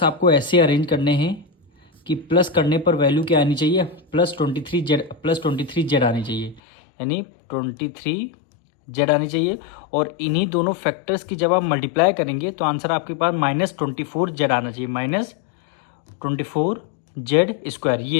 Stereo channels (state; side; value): drops out; right; at 6.6 s